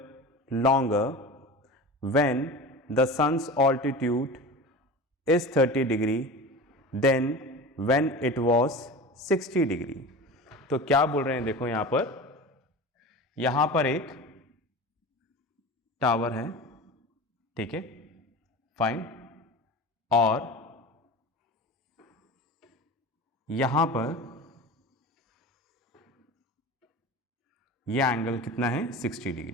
longer when the sun's altitude is 30 degree than when it was 60 degree। तो क्या बोल रहे हैं, देखो यहां पर एक टावर है, ठीक है, फाइन, और यहां पर यह एंगल कितना है, 60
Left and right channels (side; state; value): both; normal; correlation 0.33